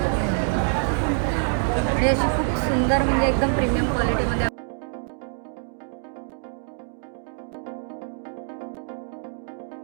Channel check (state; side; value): silent; left; digital silence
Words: आणि अशी खूप सुंदर, म्हणजे एकदम प्रीमियम क्वालिटीमध्ये